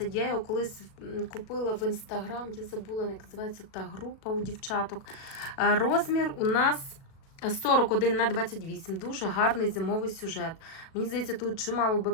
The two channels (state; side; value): late; right; 37 ms